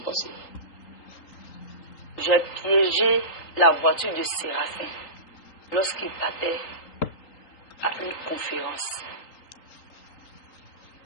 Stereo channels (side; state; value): right; late; 3.8 ms